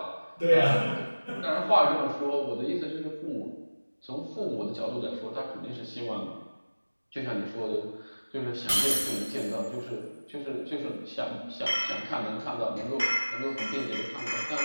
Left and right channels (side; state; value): both; inverted; correlation -1.00